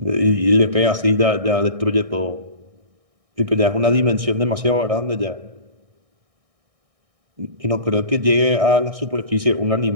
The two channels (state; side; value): late; left; 1.6 ms